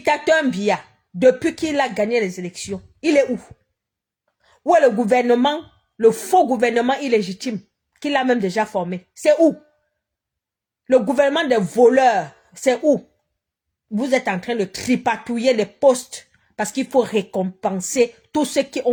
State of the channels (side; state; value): both; identical; correlation 1.00